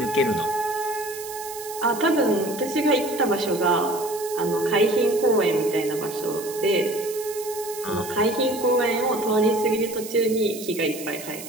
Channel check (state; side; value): noise; right; hiss, 12 dB below the sound